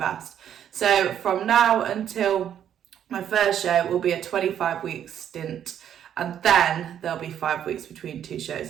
So from now until my first show will be a 25-week stint, and then there'll be 5 weeks between 2 shows.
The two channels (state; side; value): quieter; left; 9.7 dB